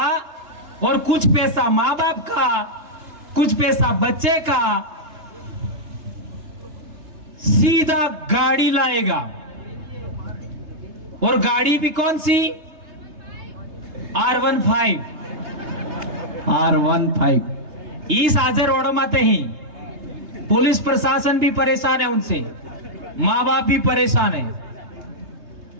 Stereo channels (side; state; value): left; late; 3.3 ms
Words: और कुछ पैसा माँ बाप का, कुछ पैसा बच्चे का, सीधा गाड़ी लाएगा। और गाड़ी भी कौन सी? R15। इस आजे रोडों माते ही पुलिस प्रशासन भी परेशान है, उनसे माँ बाप भी परेशान है।